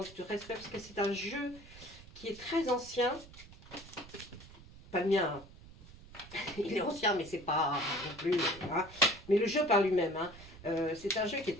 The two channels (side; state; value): right; noise; rumble, 19 dB below the sound